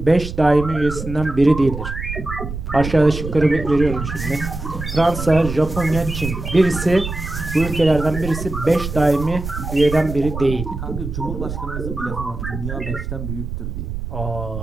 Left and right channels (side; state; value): right; noise; rumble, 7 dB below the sound